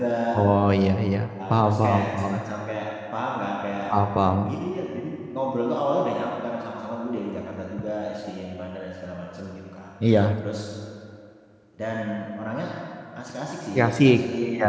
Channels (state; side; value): identical; both; correlation 1.00